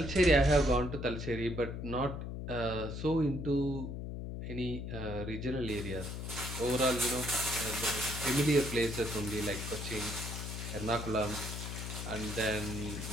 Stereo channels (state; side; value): noise; left; hum, 6 dB below the sound